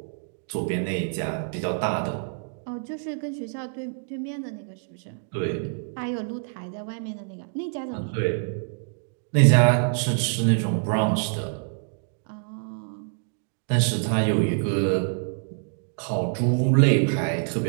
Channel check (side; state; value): left; silent; digital silence